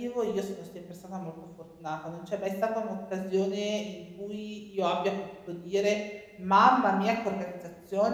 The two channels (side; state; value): both; identical; correlation 1.00